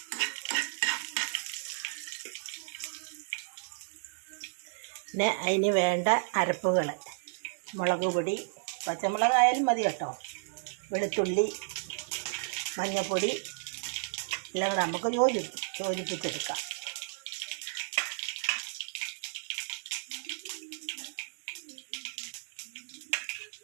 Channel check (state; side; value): silent; left; digital silence